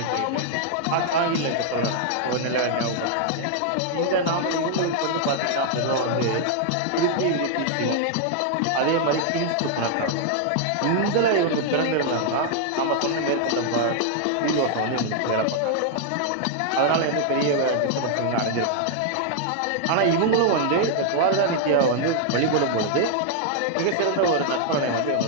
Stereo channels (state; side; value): different; both; correlation -0.01